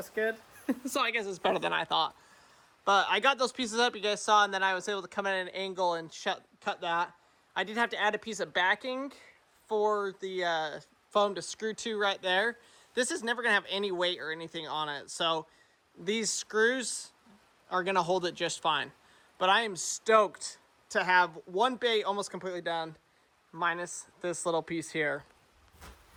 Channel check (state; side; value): identical; both; correlation 1.00